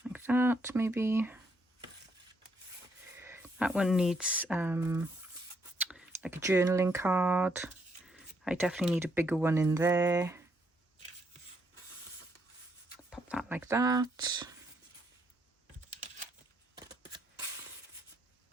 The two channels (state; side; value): normal; both; correlation 0.74